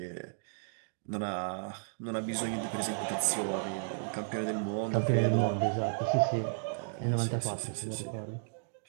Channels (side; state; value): left; silent; digital silence